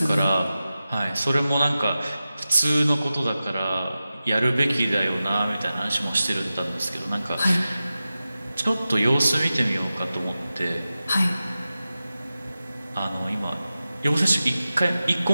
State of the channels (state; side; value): inverted; both; correlation -0.94